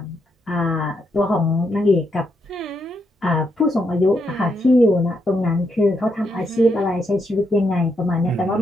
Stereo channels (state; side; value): normal; both; correlation 0.79